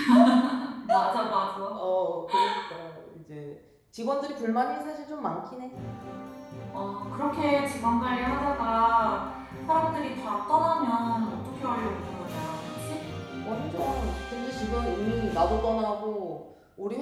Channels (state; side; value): identical; both; correlation 1.00